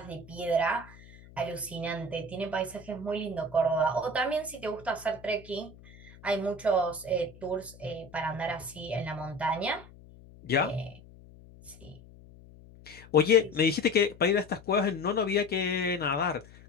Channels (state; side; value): noise; left; hum, 21 dB below the sound